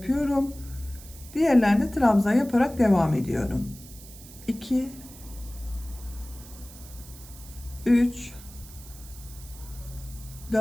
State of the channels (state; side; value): noise; right; hiss, 18 dB below the sound